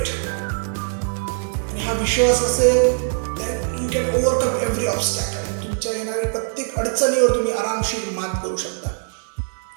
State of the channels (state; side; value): silent; left; digital silence